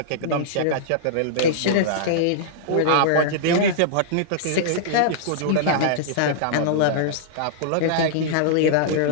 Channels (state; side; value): different; both; correlation -0.02